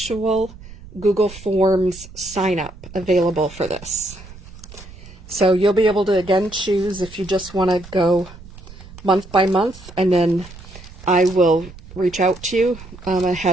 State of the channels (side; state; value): right; noise; rumble, 17 dB below the sound